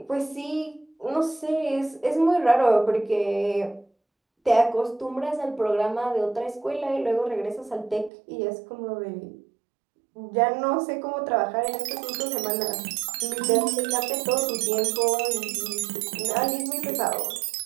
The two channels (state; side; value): drops out; left; at 8.1 s